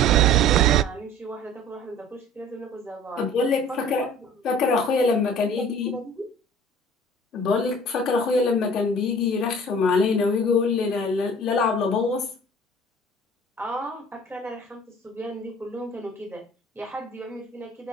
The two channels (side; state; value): both; normal; correlation 0.46